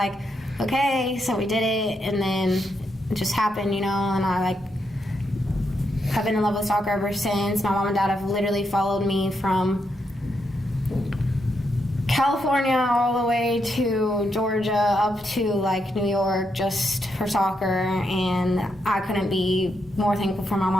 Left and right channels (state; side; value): normal; both; correlation 0.81